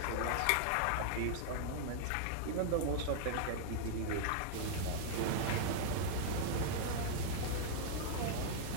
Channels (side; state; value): both; different; correlation -0.01